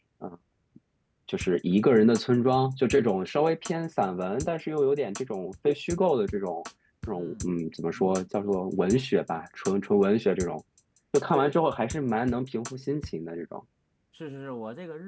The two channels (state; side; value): identical; both; correlation 1.00